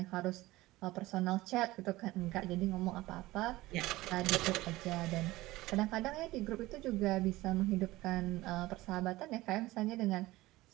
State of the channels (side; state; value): left; quieter; 18.4 dB